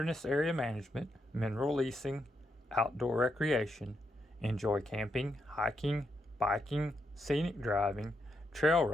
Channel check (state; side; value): normal; both; correlation 0.81